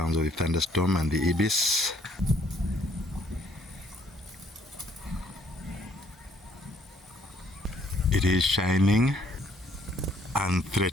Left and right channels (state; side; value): normal; both; correlation 0.65